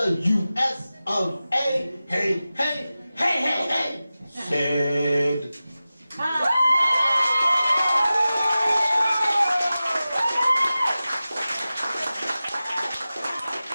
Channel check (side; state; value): both; inverted; correlation -0.95